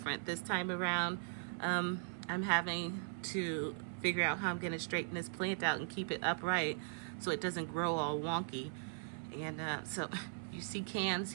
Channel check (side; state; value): left; silent; 52 dB below the other